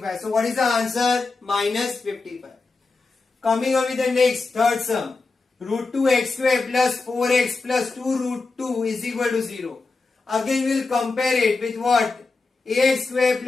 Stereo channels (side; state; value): right; quieter; 3.9 dB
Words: So what is the answer? Minus 55. Coming on with the next, third sum. Root 2x square plus 4x plus 2 root 2 is equal to 0. Again we will compare it with what? Ax square